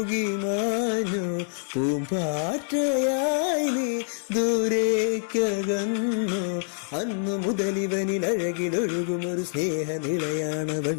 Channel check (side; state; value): right; silent; 61 dB below the other